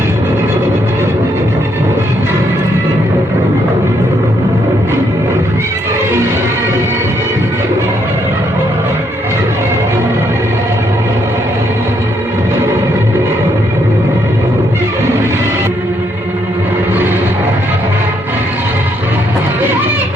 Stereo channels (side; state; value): both; normal; correlation 0.74